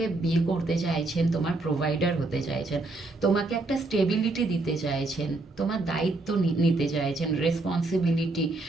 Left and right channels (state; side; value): quieter; left; 3.1 dB